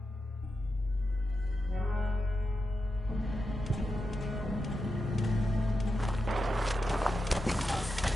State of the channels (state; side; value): normal; both; correlation 0.89